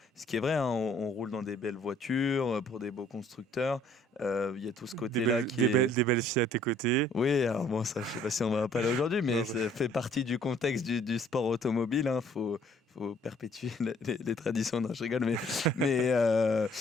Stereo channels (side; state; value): both; normal; correlation 0.60